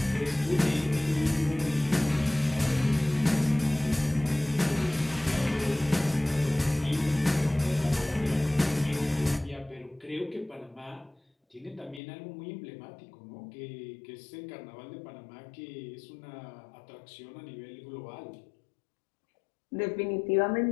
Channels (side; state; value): right; drops out; at 12.0 s